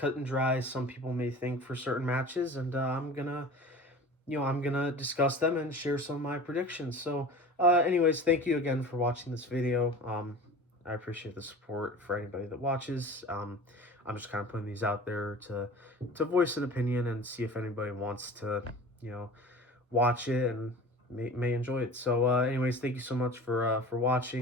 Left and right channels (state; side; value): normal; both; correlation 0.38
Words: and dry as some people may think for certain matches, and I'm gonna discuss them and share some of my predictions. So anyways, thank you again for watching this video. I appreciate the support for anybody that watches. I'm just kind of putting these out there to voice an opinion and see if anybody wants to watch it and may enjoy it. So anyways, thank you so much for